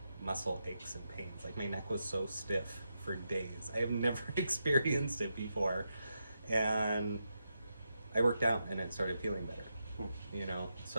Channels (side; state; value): both; inverted; correlation -0.85